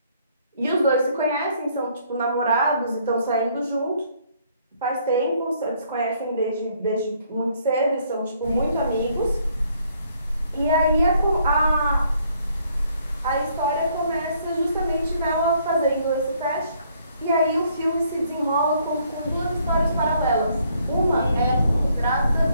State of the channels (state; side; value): inverted; both; correlation -0.67